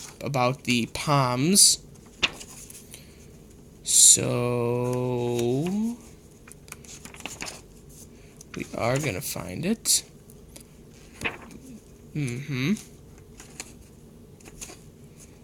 about the Palms. So we are gonna find it.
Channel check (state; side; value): identical; both; correlation 1.00